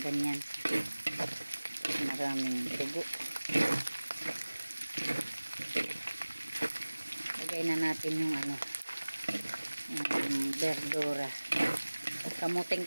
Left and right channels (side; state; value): both; inverted; correlation -1.00